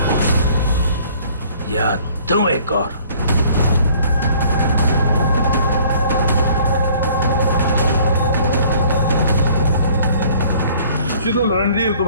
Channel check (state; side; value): inverted; both; correlation -0.55